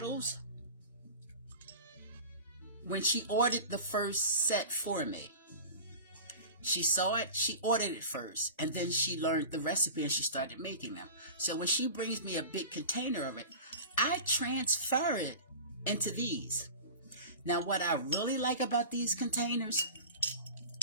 when she ordered the first set for me. She saw it, she ordered it first, and then she learned the recipe and she started making them. So when she brings me a big container of it, I transfer it into these. Now what I really like about these containers,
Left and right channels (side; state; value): both; inverted; correlation -0.34